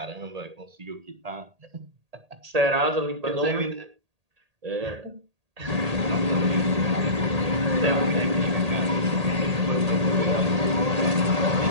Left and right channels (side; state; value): left; late; 1.8 ms